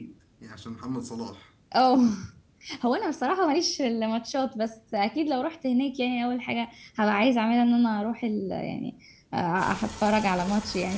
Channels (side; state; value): both; identical; correlation 1.00